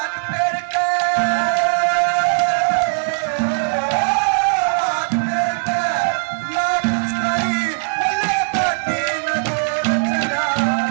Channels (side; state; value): left; silent; digital silence